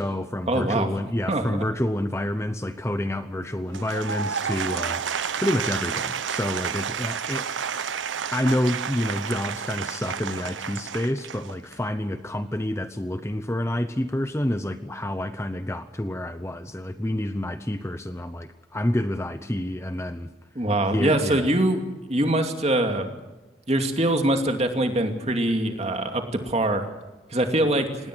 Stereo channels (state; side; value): normal; both; correlation 0.64